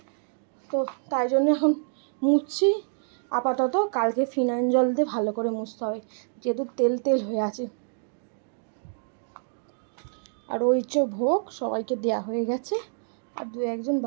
তো তাই জন্য এখন মুছছি আপাতত। কালকে ফিনাইল জল দিয়ে ভালো করে মুছতে হবে, যেহেতু তেল হয়ে আছে। আর ওই যে ভোগ সবাইকে দেয়া হয়ে গেছে, আর দু একজন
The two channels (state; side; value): silent; left; digital silence